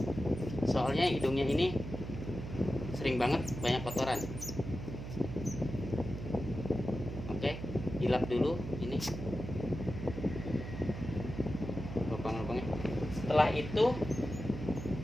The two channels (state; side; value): noise; right; hum, 8 dB below the sound